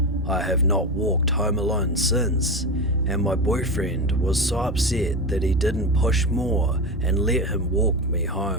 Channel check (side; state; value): both; normal; correlation 0.19